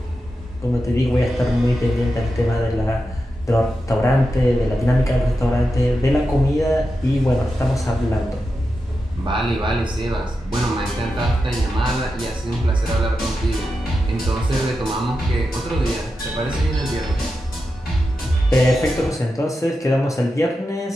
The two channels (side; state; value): both; normal; correlation 0.89